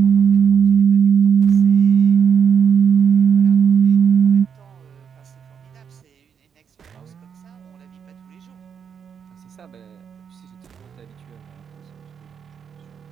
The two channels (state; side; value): quieter; left; 7.3 dB